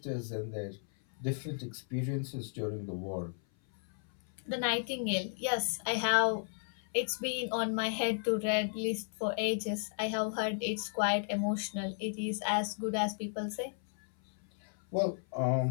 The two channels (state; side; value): silent; right; 55 dB below the other